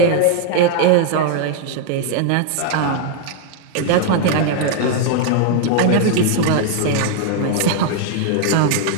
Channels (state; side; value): different; both; correlation 0.00